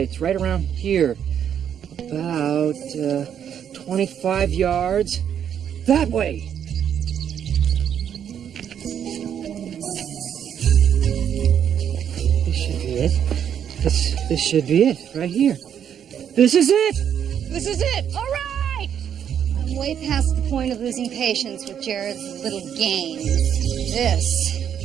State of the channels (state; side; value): quieter; left; 8.9 dB